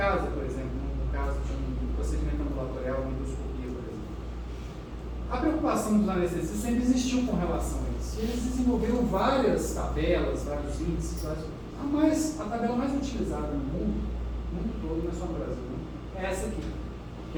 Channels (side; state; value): both; identical; correlation 1.00